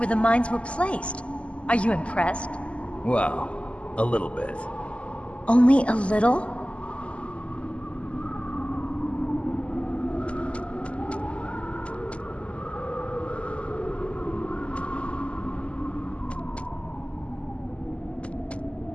the mines were placed. Are you impressed? Well, a little bit. Only a little?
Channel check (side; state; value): right; late; 0.058 ms